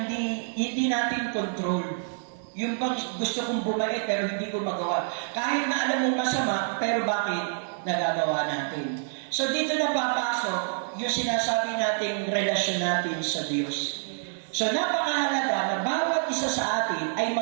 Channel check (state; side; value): silent; left; digital silence